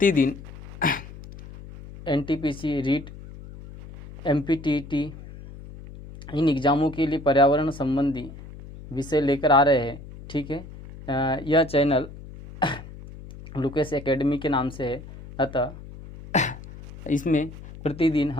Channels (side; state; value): left; noise; hum, 15 dB below the sound